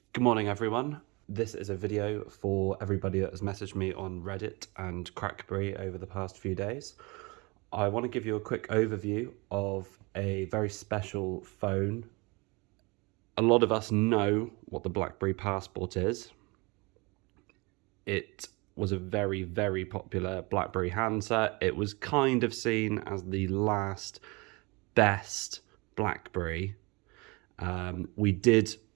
Good morning, everyone. This is a video for everybody that has messaged me on Reddit and Crackberry over the past few days. I want to give you a quick overview of a very special phone. A lot of us know what the BlackBerry Passport is. It was a very, very popular BlackBerry handset. It was kind of seen as the last best BlackBerry. We did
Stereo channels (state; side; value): quieter; left; 26.9 dB